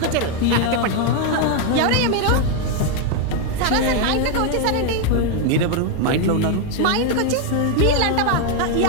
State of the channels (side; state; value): both; different; correlation 0.01